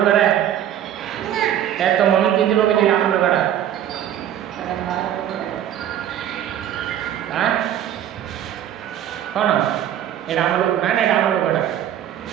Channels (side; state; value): left; quieter; 10.9 dB